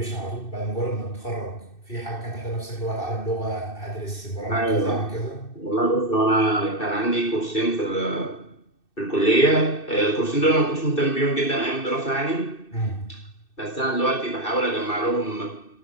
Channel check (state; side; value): late; right; 2.6 ms